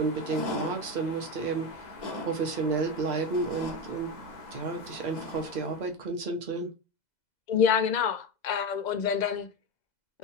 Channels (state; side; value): late; right; 2.0 ms